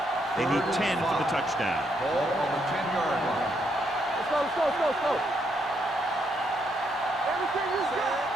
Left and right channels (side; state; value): both; normal; correlation 0.76